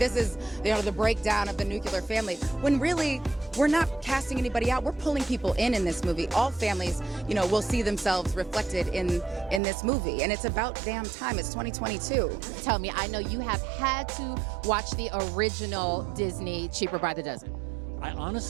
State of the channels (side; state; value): left; drops out; at 9.6 s